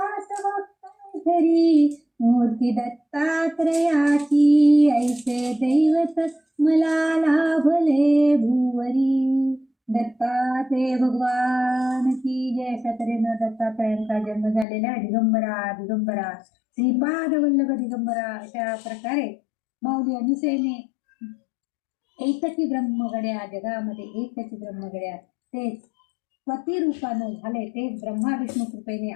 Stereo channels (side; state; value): right; drops out; at 14.7 s